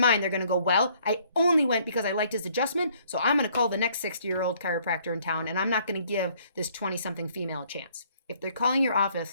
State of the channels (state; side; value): inverted; both; correlation -0.63